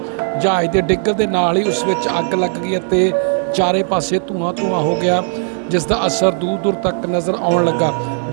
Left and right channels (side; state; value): left; silent; 57 dB below the other